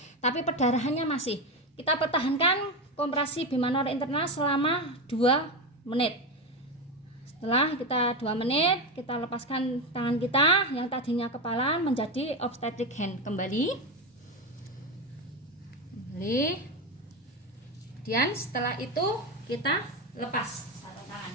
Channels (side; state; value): both; normal; correlation 0.16